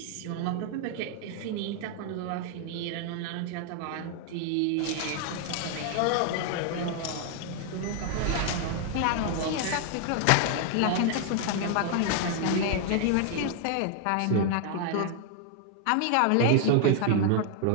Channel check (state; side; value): different; both; correlation 0.00